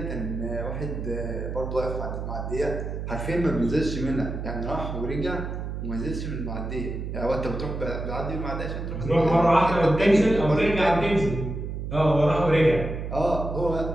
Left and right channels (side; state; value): right; noise; hum, 5 dB below the sound